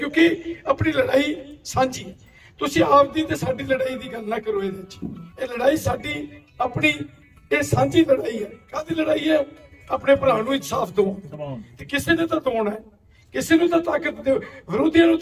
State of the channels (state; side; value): identical; both; correlation 1.00